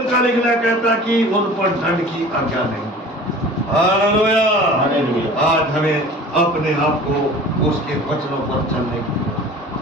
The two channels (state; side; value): normal; both; correlation 0.42